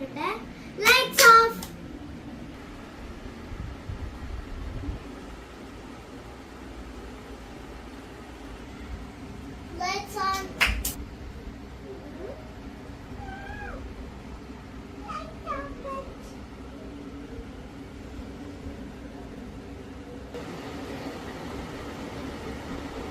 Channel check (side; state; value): both; identical; correlation 1.00